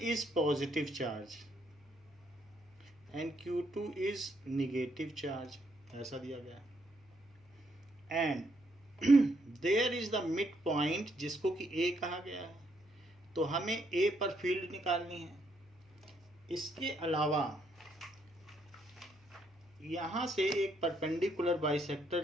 positive charge and Q2 is negative charge. ऐसा दिया गया. And there is the midpoint जिसको कि A कहा गया है. तो हमें A पर फील्ड निकालनी है. इसके अलावा यहाँ से एक परपेंडिकुलर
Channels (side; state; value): left; noise; hum, 29 dB below the sound